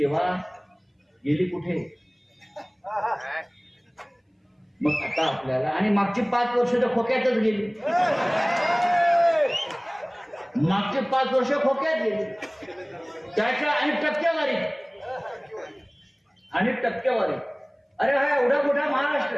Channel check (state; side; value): identical; both; correlation 1.00